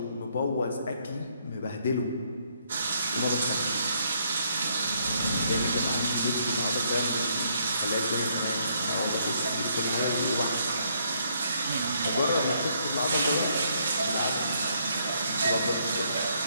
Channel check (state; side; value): inverted; both; correlation -0.71